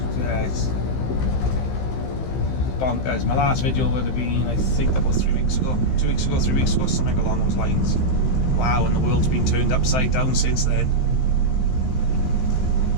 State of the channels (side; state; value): right; late; 15 ms